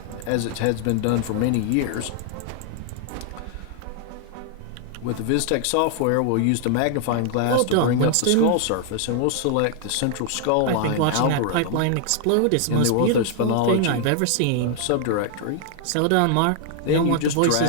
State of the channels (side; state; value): both; different; correlation 0.00